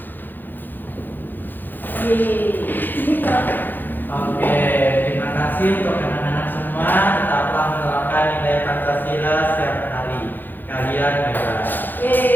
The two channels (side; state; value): right; late; 0.089 ms